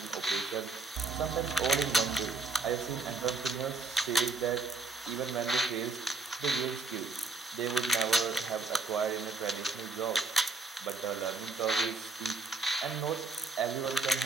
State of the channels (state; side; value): quieter; left; 3.6 dB